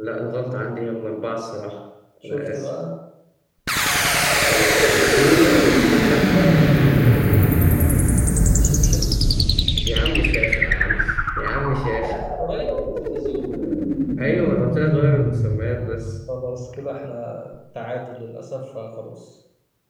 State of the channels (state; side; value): identical; both; correlation 1.00